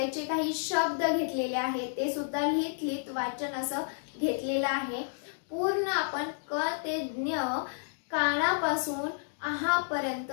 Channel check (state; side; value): silent; right; digital silence